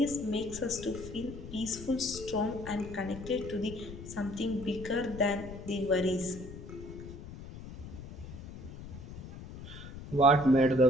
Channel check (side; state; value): left; noise; rumble, 12 dB below the sound